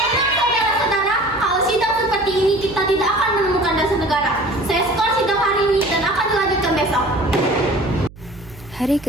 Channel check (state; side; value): noise; right; hum, 20 dB below the sound